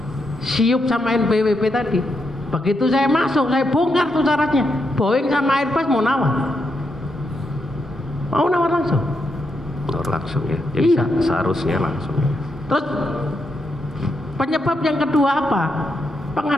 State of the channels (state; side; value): normal; both; correlation 0.82